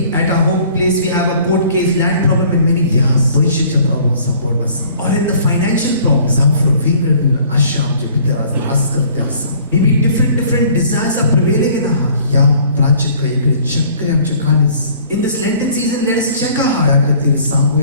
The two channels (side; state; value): both; inverted; correlation -0.54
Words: at our home place we have a court case, land problem, and many ह्या things. पयशेच्या प्रॉब्लेम सांपडना आसा Or in the financial problem. जांफरो वेगवेगळे आशा आमच्या भितर आज रास करते आसा Maybe different desires are prevailing in our heart. ह्या प्राचित इकडे चक्र आमच्या काळीस In this Lenten season, let us check our त्या heart. खातीर